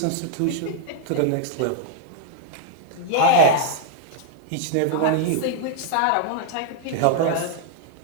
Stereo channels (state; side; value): different; both; correlation -0.01